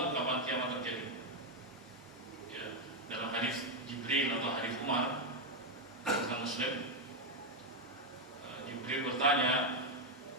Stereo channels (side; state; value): both; normal; correlation 0.03